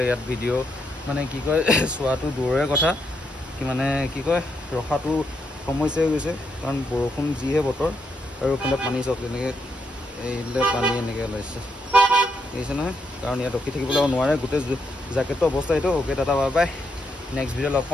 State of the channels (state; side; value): normal; both; correlation 0.79